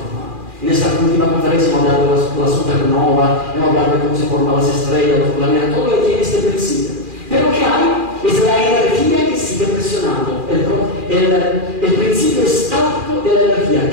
En esta última conferencia hemos hablado de la supernova, hemos hablado de cómo se forman las estrellas, los planetas, todo lo que tiene este principio. Pero ¿qué hay es la energía que sigue presionando, el principio estático de la energía.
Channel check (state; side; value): late; left; 2.4 ms